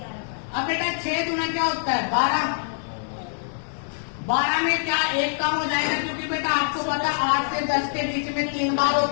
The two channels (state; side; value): silent; right; digital silence